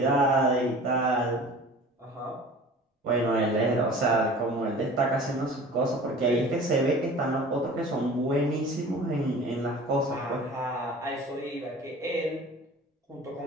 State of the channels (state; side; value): normal; both; correlation 0.42